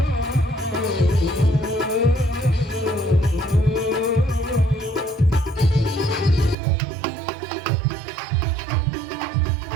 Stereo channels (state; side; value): drops out; left; at 6.6 s